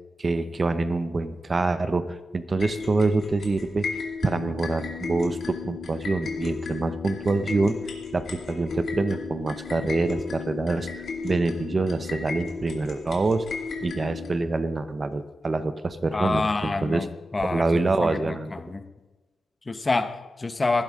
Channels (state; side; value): normal; both; correlation 0.92